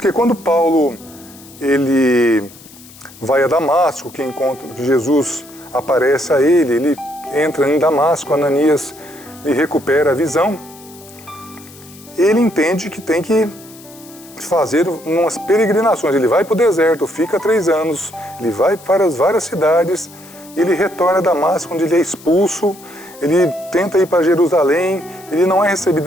quando Paulo ele vai a Damasco, que Jesus aparece a ele entra em Damasco, Ananias lhe recupera a visão, ele entende que tem que fazer umas peregrinações. Ele vai para o deserto, fica 3 anos, ele vai para as várias cidades, ele retorna a Damasco, onde ele é expulso, ele tenta ir para Jerusalém, ele não é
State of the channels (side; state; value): left; noise; hiss, 21 dB below the sound